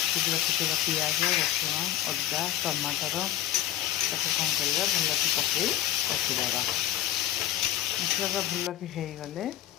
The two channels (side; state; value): right; quieter; 13.1 dB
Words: रखीदा पियाज रसुण अदा टमाटर ताको कौन करवा भल कि पकई रखीदा मसला भल कि होगले